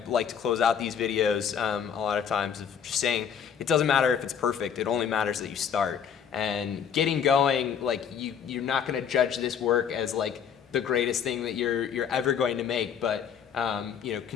like to close out these videos a lot of times, of just saying it doesn't matter if it's perfect. It only matters that you start. And getting going, like, you're not going to judge this work as, like, the greatest thing that you're ever going to make, but you know,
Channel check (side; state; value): right; quieter; 7.8 dB